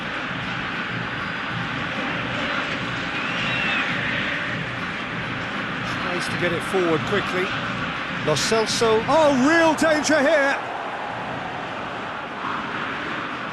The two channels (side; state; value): both; identical; correlation 1.00